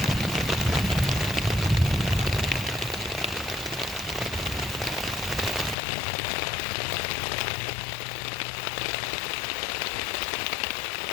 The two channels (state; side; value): drops out; right; at 5.8 s